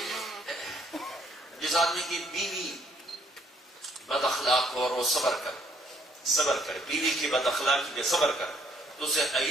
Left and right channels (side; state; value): both; normal; correlation 0.66